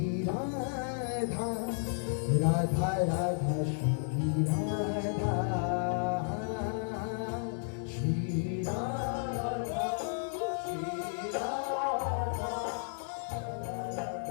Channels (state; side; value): silent; right; 56 dB below the other